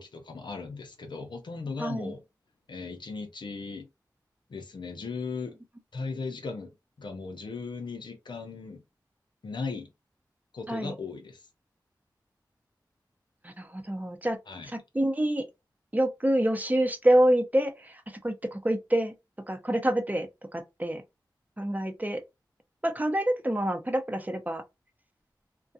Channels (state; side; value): normal; both; correlation 0.92